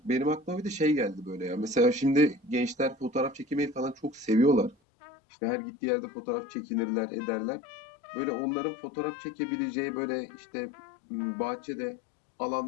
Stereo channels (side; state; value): right; drops out; at 4.8 s